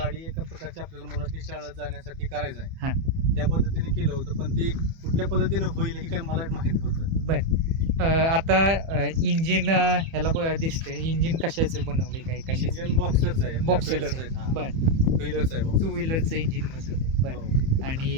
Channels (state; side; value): late; left; 30 ms